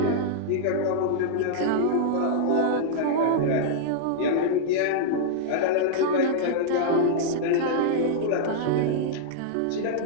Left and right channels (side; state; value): both; different; correlation -0.02